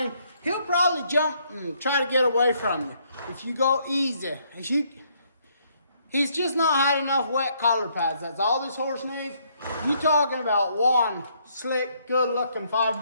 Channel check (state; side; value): inverted; both; correlation -0.70